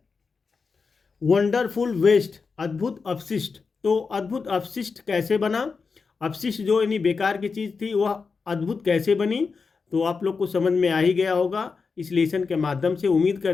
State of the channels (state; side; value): quieter; right; 4.9 dB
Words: वंडरफुल वेस्ट, अद्भुत अपशिष्ट। तो अद्भुत अपशिष्ट कैसे बना, अपशिष्ट जो यानी बेकार की चीज़ थी वह अद्भुत कैसे बनी, तो आप लोग को समझ में आ ही गया होगा इस लेसन के माध्यम से। उम्मीद